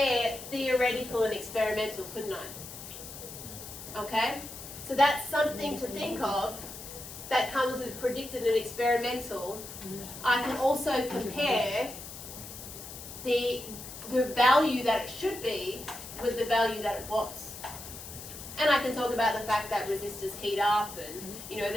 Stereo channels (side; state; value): left; noise; hiss, 12 dB below the sound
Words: theoretical and experimental, couldn't I? Okay? So that's something to think of that comes with predicted and experimental. I can also compare the value that it should be with the value that it was. And I can talk about the fact that resistors heat up and,